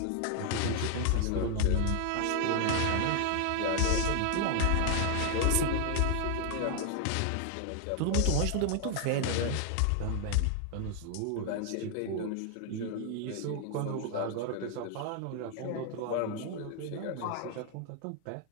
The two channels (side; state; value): both; different; correlation 0.00